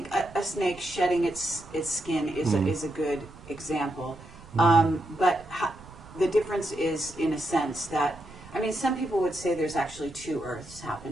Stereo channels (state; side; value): noise; right; rumble, 19 dB below the sound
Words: a snake shedding its skin is a good example. But the difference is, in a sense, that, I mean, some people would say there's actually two Earths